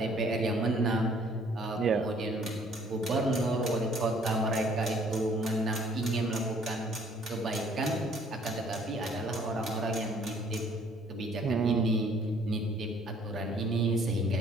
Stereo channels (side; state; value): both; normal; correlation 0.59